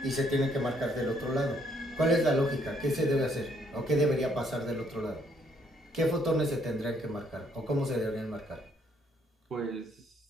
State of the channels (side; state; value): both; normal; correlation 0.69